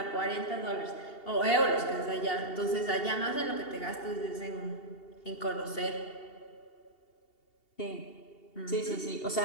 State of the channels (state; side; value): late; right; 2.7 ms